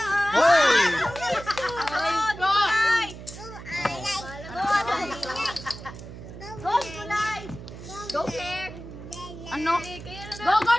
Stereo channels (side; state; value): right; noise; hum, 13 dB below the sound